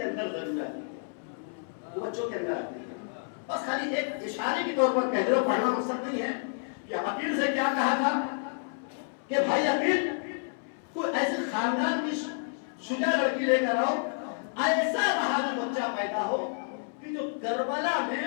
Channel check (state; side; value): silent; right; 58 dB below the other